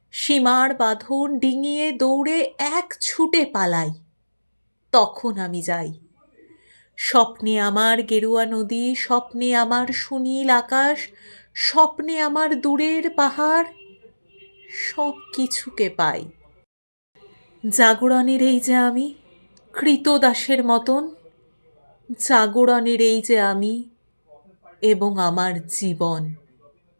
সীমার বাঁধন ডিঙিয়ে দৌড়ে এক ছুটে পালাই, তখন আমি যাই। স্বপ্নে আমার গেরুয়া নদী, স্বপ্নে আমার সুনীল আকাশ, স্বপ্নে আমার দূরের পাহাড়, সব কিছুকে পাই। জাগরণের এই যে আমি, কৃতদাসের মতন, জাগরণের এই যে আমি এবং আমার জীবন।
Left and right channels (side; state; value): both; inverted; correlation -1.00